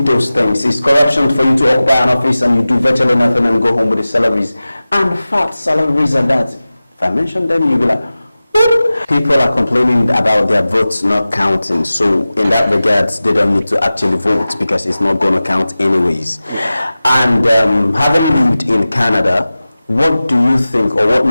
those things. It's corruption for you to occupy an office and you do virtually nothing and go home with the salaries. And fat salaries are that. If I mention them, you'll be like, whoop. People are complaining about their votes not counting. So in that regards, they don't need to actually vote because it's not going to count anyways. And having lived in Canada, what do you think, or what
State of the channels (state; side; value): inverted; both; correlation -0.96